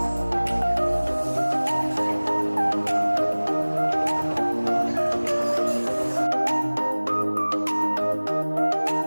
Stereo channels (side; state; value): both; inverted; correlation -1.00